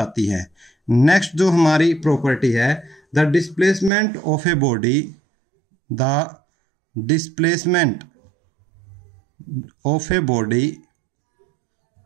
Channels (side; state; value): left; drops out; at 3.9 s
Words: है। नेक्स्ट जो हमारी प्रॉपर्टी है, the displacement of a body, the displacement of a body,